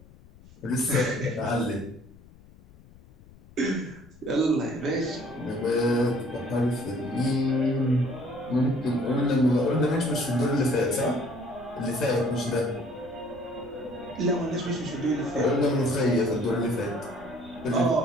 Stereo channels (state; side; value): noise; left; rumble, 23 dB below the sound